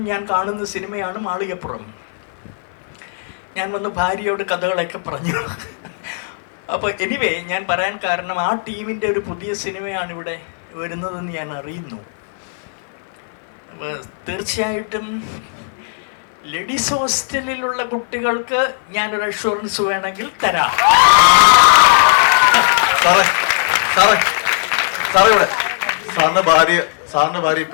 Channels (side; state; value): right; silent; 56 dB below the other